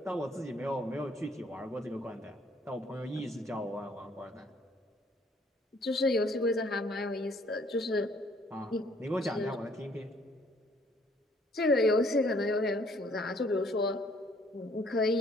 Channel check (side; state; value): both; normal; correlation 0.62